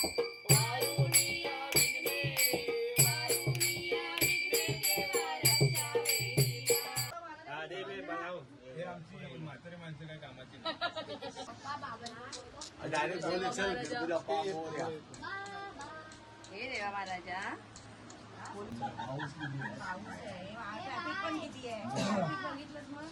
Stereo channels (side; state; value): both; identical; correlation 1.00